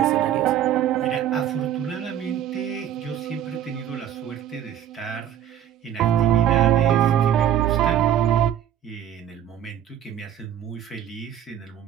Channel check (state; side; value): quieter; left; 10.4 dB